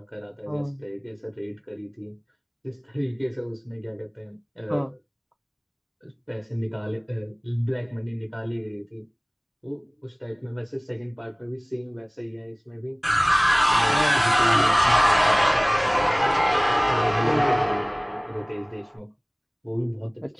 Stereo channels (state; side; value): identical; both; correlation 1.00